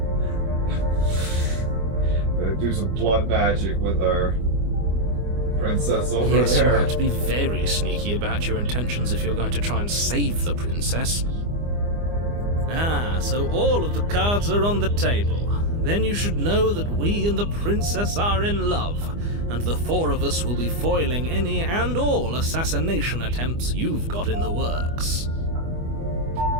Do some blood magic with our princess over there. Yes, you'll have to be very sneaky about your intentions if you're going to try and save the princess. Ah, so all of the cards are on the table. Then you should know that we and the princess are in love, and the four of us will be foiling any and all assassination attempts you've got in the works.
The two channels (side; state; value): left; late; 24 ms